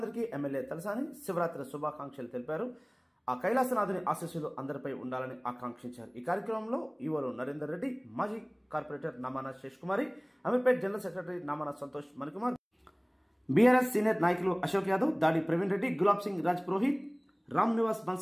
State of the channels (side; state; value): both; identical; correlation 1.00